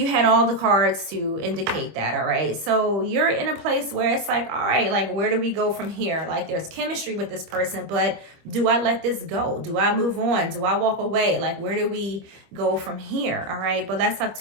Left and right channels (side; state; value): left; late; 25 ms